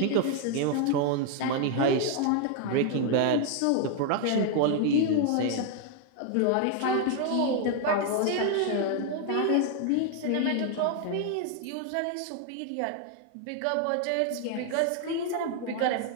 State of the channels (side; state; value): both; different; correlation 0.00